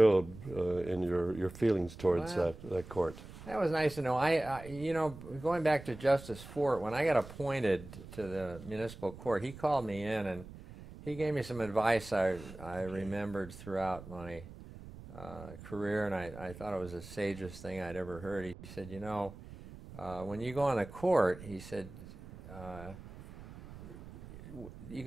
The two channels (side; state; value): right; noise; rumble, 15 dB below the sound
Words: in your feelings towards that court. That was nice to know. Going back to Justice Fort, when I got appointed to the municipal court, he called me in and he gave me some advice I remembered throughout my career, and I thought it was the sagest thing I'd ever heard. He said, when you go on a court, he said, you